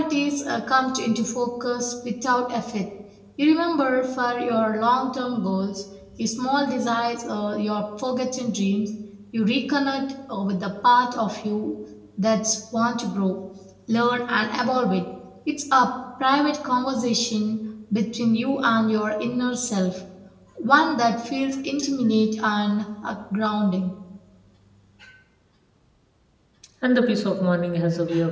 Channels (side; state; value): both; identical; correlation 1.00